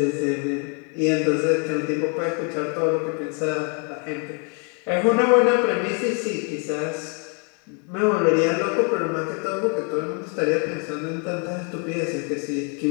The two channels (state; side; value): quieter; right; 37.3 dB